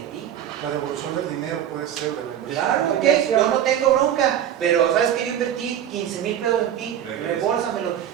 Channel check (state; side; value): quieter; left; 10.3 dB